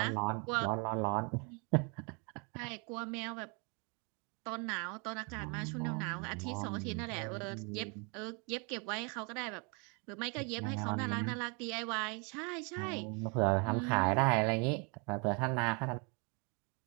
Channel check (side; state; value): left; quieter; 33.8 dB